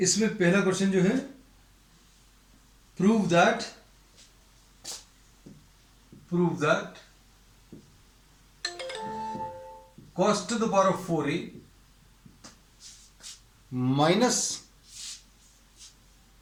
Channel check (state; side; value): identical; both; correlation 1.00